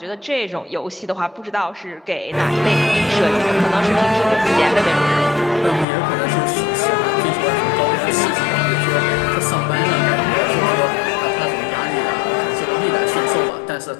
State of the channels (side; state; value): right; drops out; at 5.9 s